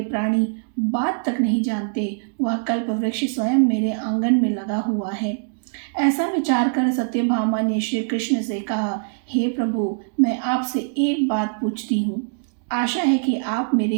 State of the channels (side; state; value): left; silent; digital silence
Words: प्राणी बात तक नहीं जानते, वह कल्प वृक्ष स्वयं मेरे आंगन में लगा हुआ है। ऐसा विचार कर सत्यभामा ने श्री कृष्ण से कहा, हे प्रभु, मैं आपसे एक बात पूछती हूँ। आशा है कि आप मेरे